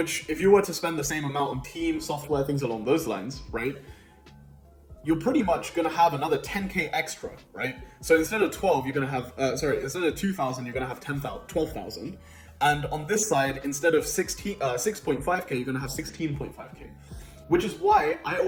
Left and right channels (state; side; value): identical; both; correlation 1.00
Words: if you were to spend the same amount on team, software, things along those lines, right? You're pretty much going to have another 10K extra, right? So instead of 12, you're going to have, instead of 2,000, you're going to have 12,000. And on this side, instead of 6.5K, you're going to have 16.5K. Which is why I